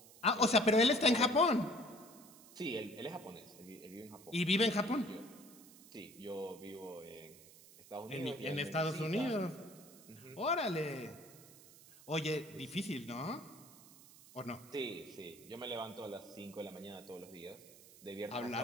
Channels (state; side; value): noise; right; hiss, 21 dB below the sound